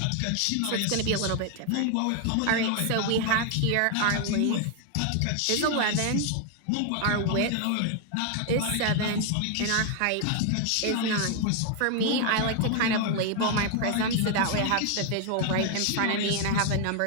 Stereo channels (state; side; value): different; both; correlation 0.00